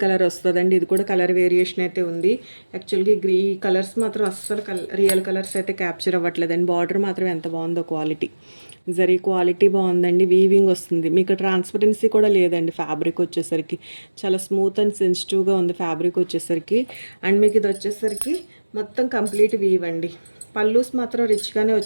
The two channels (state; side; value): inverted; both; correlation -1.00